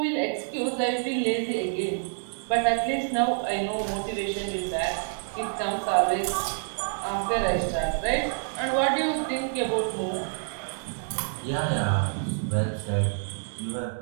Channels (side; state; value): left; silent; digital silence